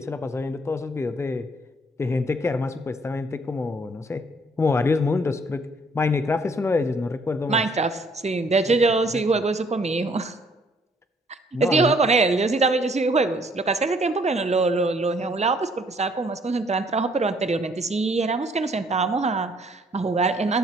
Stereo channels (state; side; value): normal; both; correlation 0.63